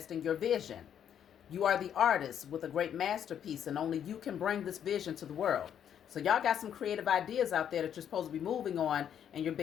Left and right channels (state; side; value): quieter; right; 9.2 dB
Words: your vision. You are the artist with a great masterpiece, and only you can bring this vision to the world. So y'all got some creative ideas out there that you're supposed to be moving on, and you're